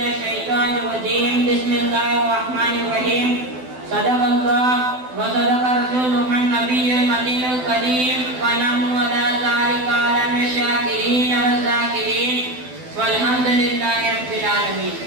الشيطان الرجيم بسم الله الرحمن الرحيم صدق الله وصدق رسوله النبي المدين الكريم ونحن على ذلك من الشاكرين والذاكرين والحمد لله رب العالمين.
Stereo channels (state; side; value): late; left; 12 ms